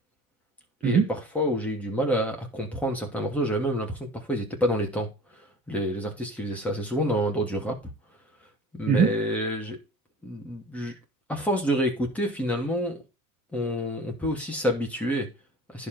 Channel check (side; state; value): both; normal; correlation 0.42